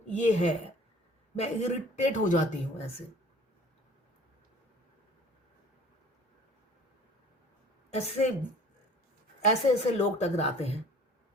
ये है, मैं इरिटेट हो जाती हूँ ऐसे ऐसे ऐसे ऐसे लोग टकराते हैं।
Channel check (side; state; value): both; normal; correlation 0.49